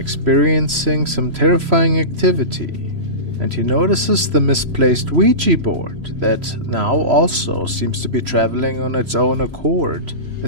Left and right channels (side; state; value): left; late; 3.0 ms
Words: some terrifying activity. And he notices the misplaced Ouija board that now also seems to be traveling on its own accord, a